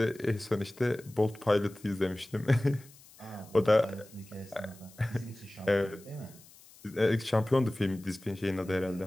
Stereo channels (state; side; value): noise; left; hiss, 23 dB below the sound